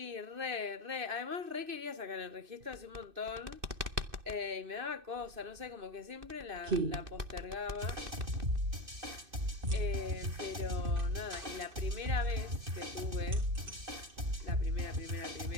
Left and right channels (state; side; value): late; left; 2.6 ms